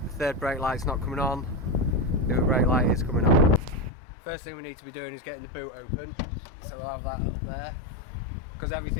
the third brake light's not coming on. The other brake light is coming on. First thing we need to be doing is getting the boot open. So we'll have that up there, because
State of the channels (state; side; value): drops out; right; at 3.9 s